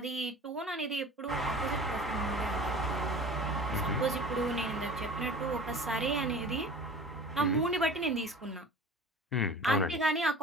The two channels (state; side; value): normal; both; correlation 0.41